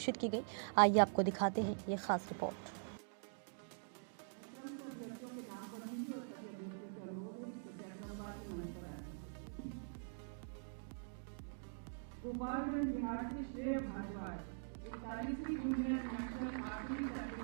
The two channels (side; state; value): left; silent; digital silence